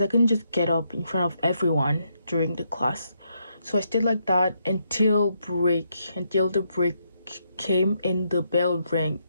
I couldn't just get up in front of everyone during the class. So I stayed like that until the break came and the bell rang.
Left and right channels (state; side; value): inverted; both; correlation -0.78